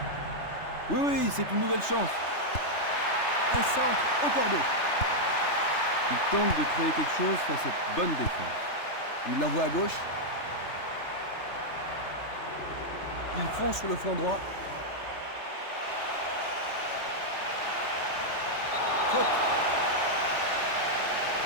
Oui, oui, c'est une nouvelle chance. Un centre au cordeau. Il tente de créer quelque chose face à cette bonne défense. Il l'envoie à gauche. Il fonce sur le flanc droit. Faute.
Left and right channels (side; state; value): right; late; 3.3 ms